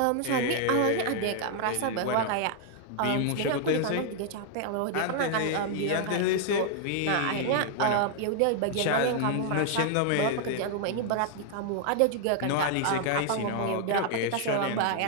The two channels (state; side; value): different; both; correlation 0.00